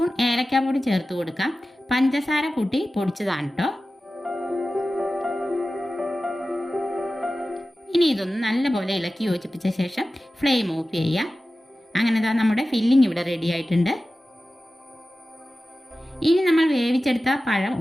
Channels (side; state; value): both; normal; correlation 0.95